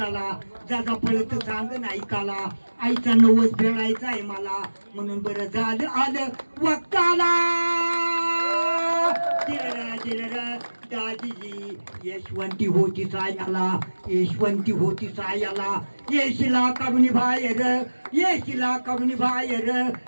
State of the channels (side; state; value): both; inverted; correlation -1.00